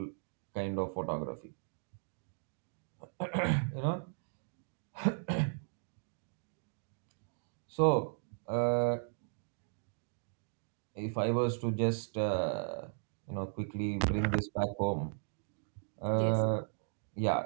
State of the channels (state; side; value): silent; left; digital silence